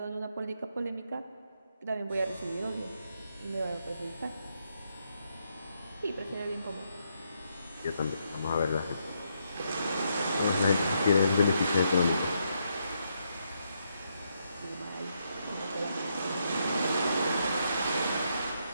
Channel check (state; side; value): inverted; both; correlation -0.78